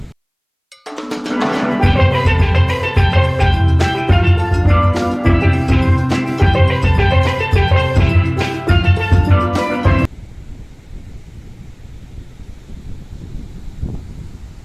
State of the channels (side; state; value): both; identical; correlation 1.00